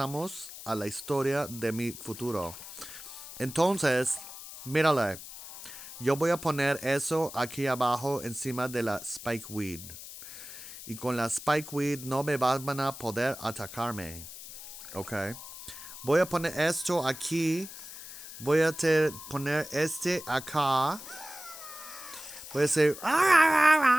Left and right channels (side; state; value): left; noise; hiss, 13 dB below the sound